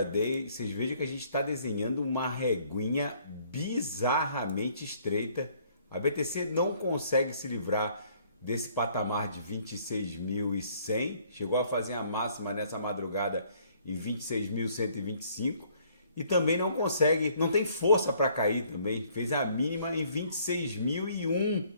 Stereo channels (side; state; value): both; inverted; correlation -0.62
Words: Vocês vejam que a gente está desenhando uma reguinha bizarramente estreita. A BTC não consegue se livrar desse patamar de 26.100, chegou a fazer a máxima nessa madrugada em 26.125 e também não consegue, não tem força para cair também, fez a mínima em 26.001.